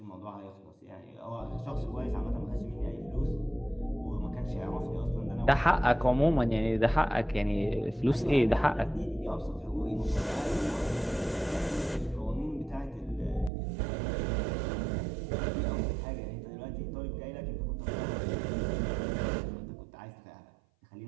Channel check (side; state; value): left; drops out; at 13.5 s